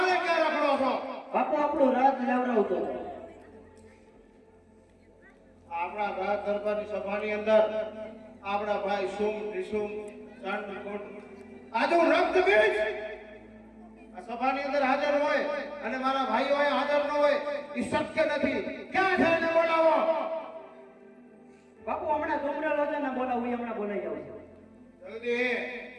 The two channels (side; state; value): both; identical; correlation 1.00